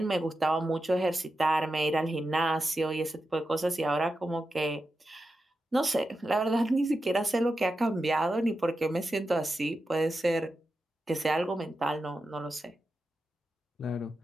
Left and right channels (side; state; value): both; normal; correlation 0.90